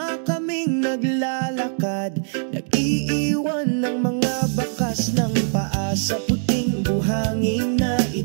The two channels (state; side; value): silent; left; digital silence